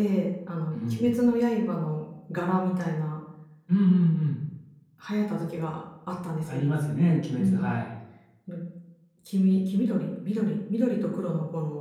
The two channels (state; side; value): identical; both; correlation 1.00